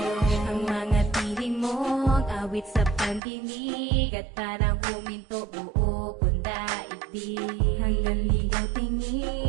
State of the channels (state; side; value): drops out; left; at 3.2 s